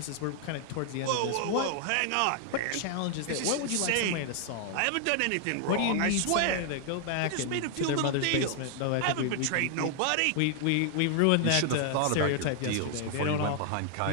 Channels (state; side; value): different; both; correlation 0.00